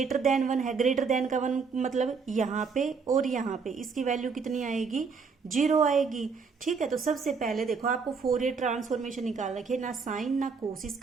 देन 1 है, ग्रेटर देन का 1 मतलब यहाँ पे और यहाँ पे, इसकी वैल्यू कितनी आएगी, 0 आएगी। ठीक है, तो सबसे पहले देखो आपको फोरियर ट्रांसफॉर्मेशन निकाल रखी है, ना साइन ना कोस,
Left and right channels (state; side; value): quieter; left; 5.3 dB